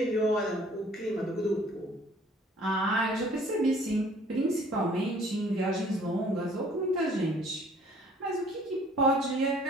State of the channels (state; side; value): normal; both; correlation 0.55